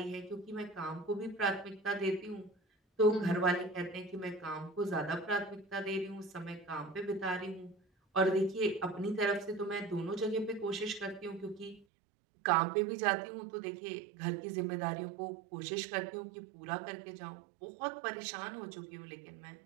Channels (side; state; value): left; drops out; at 11.9 s